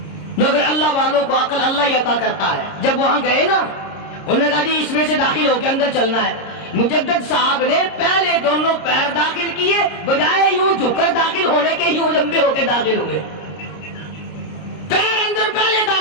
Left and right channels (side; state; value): right; late; 30 ms